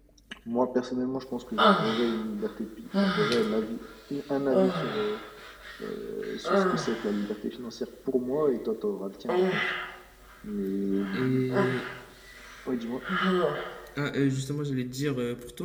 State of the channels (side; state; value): both; identical; correlation 1.00